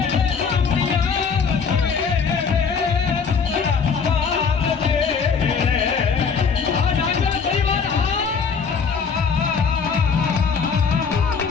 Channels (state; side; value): quieter; right; 5.8 dB